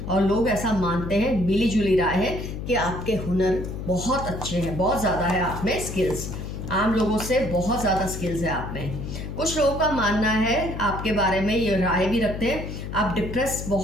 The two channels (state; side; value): noise; left; hum, 7 dB below the sound